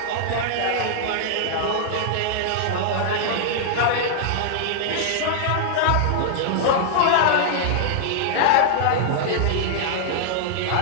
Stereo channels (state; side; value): different; both; correlation -0.01